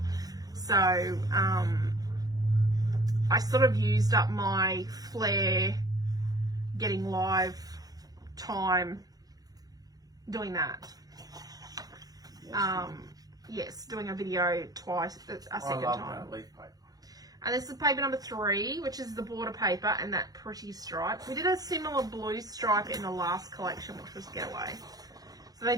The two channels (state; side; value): late; left; 0.18 ms